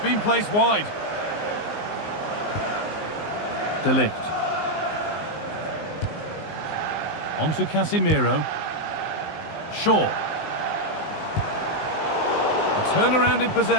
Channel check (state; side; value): late; right; 19 ms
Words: placed wide. De Ligt. On to Casemiro. Shaw. A turnaround in